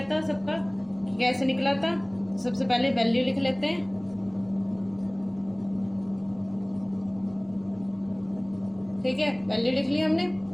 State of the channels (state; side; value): noise; left; rumble, 28 dB below the sound